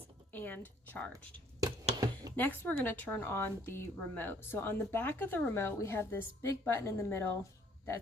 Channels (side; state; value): both; normal; correlation 0.62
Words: and charged. Next, we're going to turn on the remote. So on the back of the remote, we have this big button in the middle.